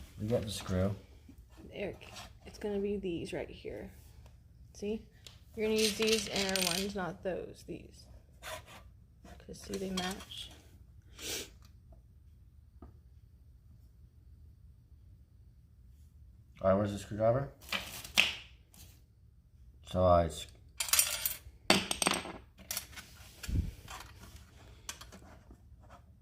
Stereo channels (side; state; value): both; identical; correlation 1.00